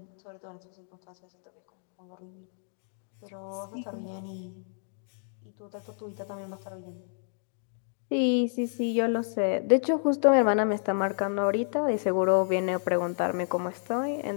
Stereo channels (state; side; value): silent; right; digital silence